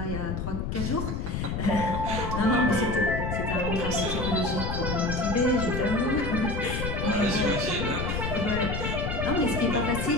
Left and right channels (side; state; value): left; noise; rumble, 3 dB below the sound